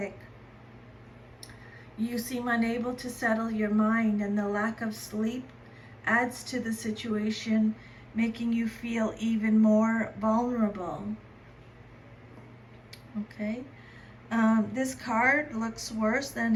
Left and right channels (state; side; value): identical; both; correlation 1.00